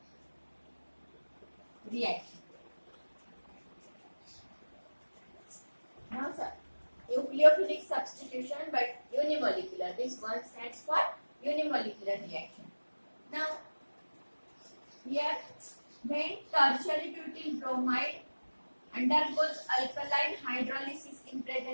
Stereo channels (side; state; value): both; inverted; correlation -1.00